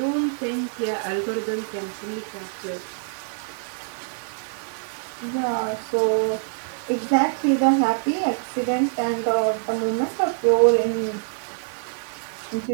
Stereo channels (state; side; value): silent; left; 62 dB below the other